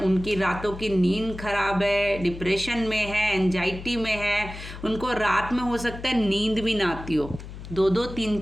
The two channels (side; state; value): left; noise; hum, 12 dB below the sound